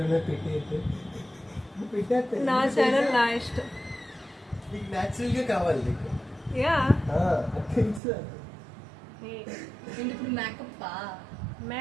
నా ఛానల్ నా ఇష్టం. నీకు న్యాచురల్గా కావాలి నీకు. యా తెలుసు. ఇప్పుడు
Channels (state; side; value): drops out; left; at 8.0 s